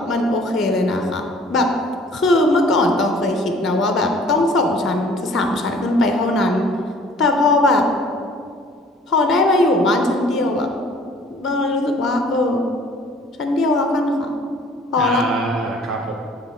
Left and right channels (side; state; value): both; normal; correlation 0.54